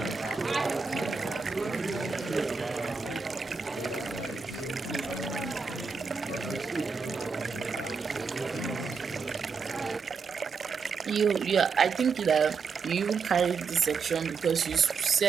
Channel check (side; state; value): left; quieter; 5.3 dB